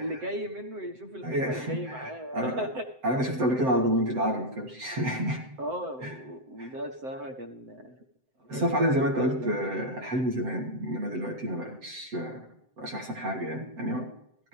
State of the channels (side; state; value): left; late; 7.8 ms